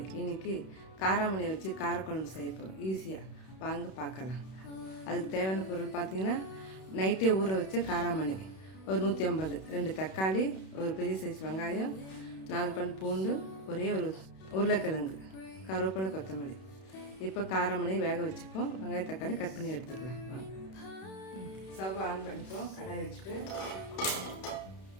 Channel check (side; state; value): right; late; 31 ms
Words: இன்னைக்கு காராமணி வச்சு காரக்குழம்பு செய்ய போகிறோம். ஈஸியாக வாங்க பார்க்கலாம். அதுக்கு தேவையான பொருள் பார்த்தீங்கன்னா, நைட்டே ஊற வச்ச காராமணி ஒரு 150, 2 தக்காளி, ஒரு பெரிய சைஸ் வெங்காயம், 4 பல் பூண்டு, ஒரே ஒரு உருளைக்கிழங்கு, கருவேப்பிலை, கொத்தமல்லி. இப்போ காராமணி வேக வச்சுப்போம். வெங்காயம் தக்காளி கட் பண்ணி எடுத்துக்கலாம். வாங்க. ஸ்டவ் ஆன் பண்ணிப்போம். கடாய் வச்சுட்டு